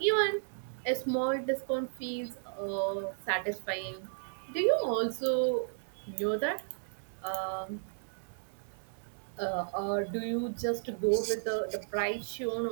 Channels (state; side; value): silent; left; digital silence